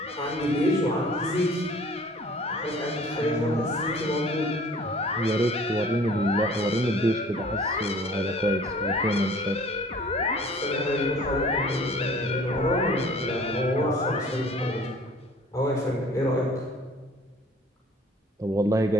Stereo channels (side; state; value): both; normal; correlation 0.50